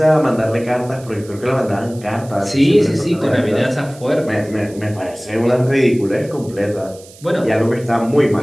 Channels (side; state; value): right; noise; hiss, 22 dB below the sound